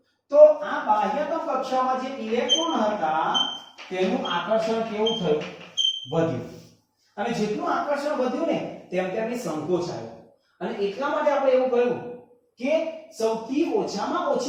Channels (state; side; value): identical; both; correlation 1.00